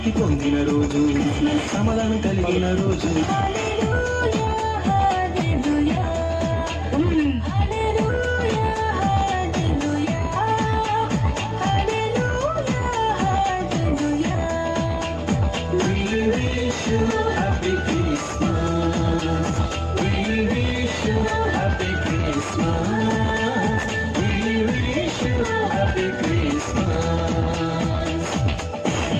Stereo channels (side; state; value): both; identical; correlation 1.00